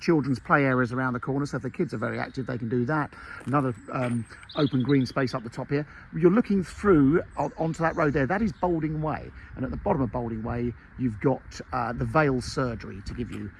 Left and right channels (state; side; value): identical; both; correlation 1.00